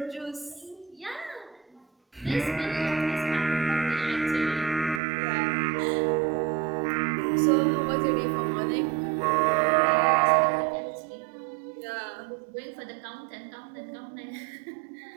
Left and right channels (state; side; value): drops out; left; at 5.0 s